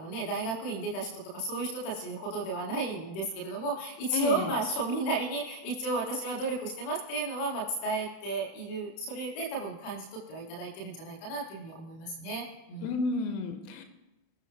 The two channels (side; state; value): right; late; 31 ms